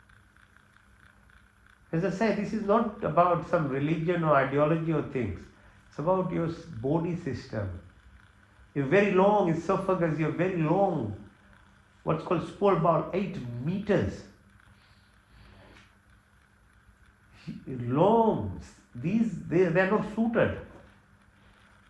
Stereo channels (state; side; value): identical; both; correlation 1.00